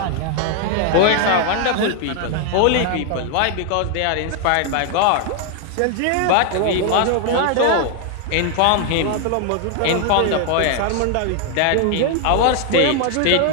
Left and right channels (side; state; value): both; different; correlation 0.00